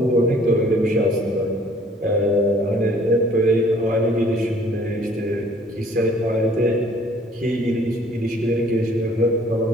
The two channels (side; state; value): both; normal; correlation 0.57